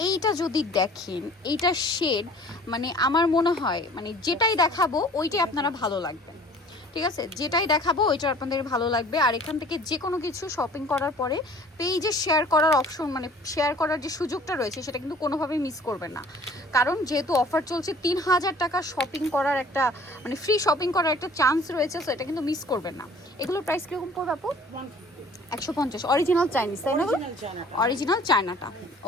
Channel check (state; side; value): normal; both; correlation 0.50